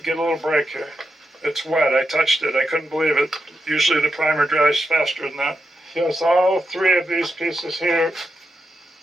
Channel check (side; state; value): both; normal; correlation 0.86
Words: get a little break here. It's wet. I touched it. I couldn't believe it. Usually the primer dries faster than that. Yes, all 3 of these pieces here